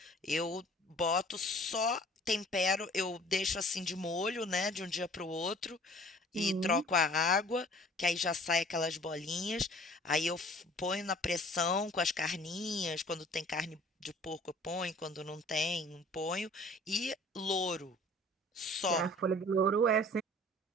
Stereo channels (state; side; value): normal; both; correlation 0.50